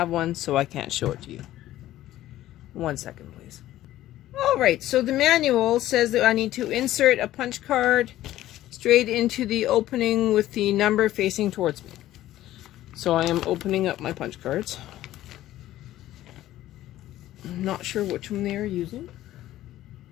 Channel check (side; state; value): right; quieter; 14.3 dB